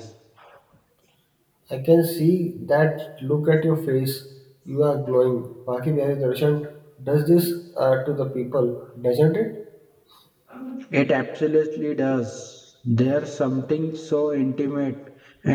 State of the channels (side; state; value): both; identical; correlation 1.00